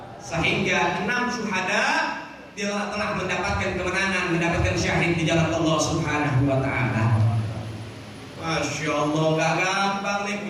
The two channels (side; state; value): both; identical; correlation 1.00